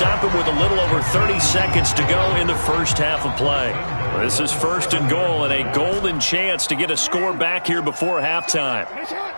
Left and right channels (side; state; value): both; inverted; correlation -1.00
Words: it with a little over 30 seconds to go in the first half of play. This is first and goal and a golden chance to get a score back here before halftime.